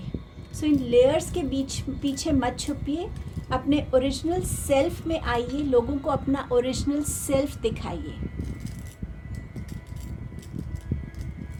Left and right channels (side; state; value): both; identical; correlation 1.00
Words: सो इन लेयर्स के पीछे मत छुपिए, अपने ओरिजिनल सेल्फ में आइए, लोगों को अपना ओरिजिनल सेल्फ दिखाइए।